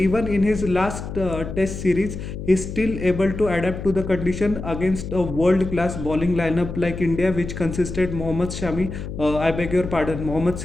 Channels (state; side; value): noise; left; hum, 8 dB below the sound